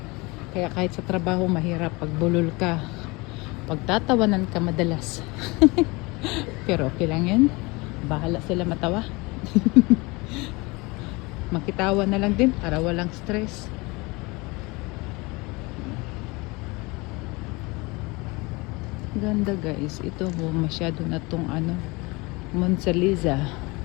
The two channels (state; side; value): quieter; right; 25.1 dB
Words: Kaya kahit sa trabaho mahirap pag bulol ka. Pagtatawanan ka madalas. Pero okay lang yan. Bahala sila matawa. Makitawa na lang din para walang stress. Ganda guys. Ito masyado na tong Monsaliza